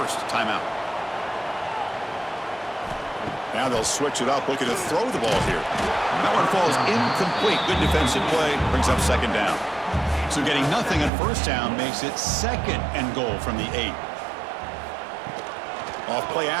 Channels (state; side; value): drops out; left; at 11.1 s